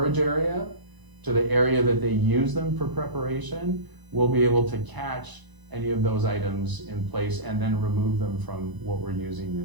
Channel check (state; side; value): late; left; 1.0 ms